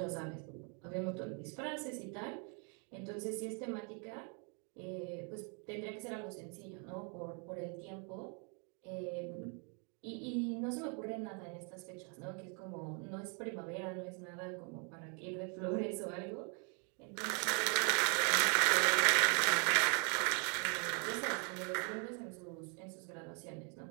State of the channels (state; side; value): quieter; left; 37.4 dB